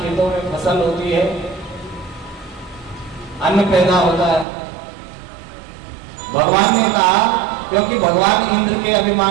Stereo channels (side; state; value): left; drops out; at 4.5 s